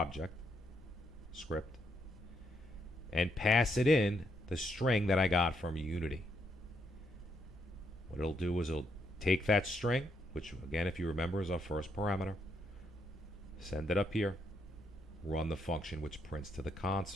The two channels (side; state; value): both; normal; correlation 0.77